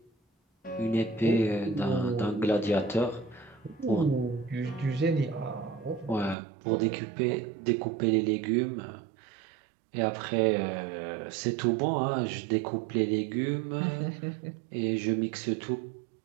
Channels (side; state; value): left; drops out; at 6.4 s